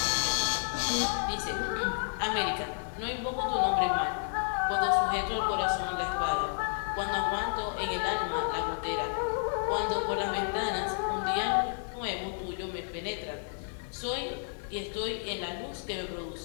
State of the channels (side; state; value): right; silent; 57 dB below the other